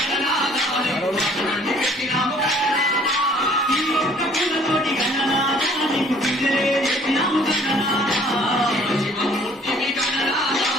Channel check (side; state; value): both; normal; correlation 0.57